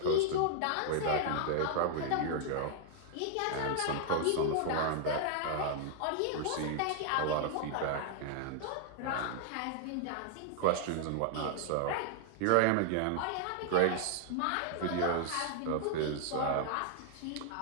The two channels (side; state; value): both; different; correlation 0.00